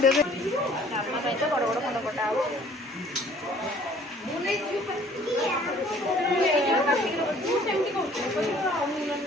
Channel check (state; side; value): normal; both; correlation 0.55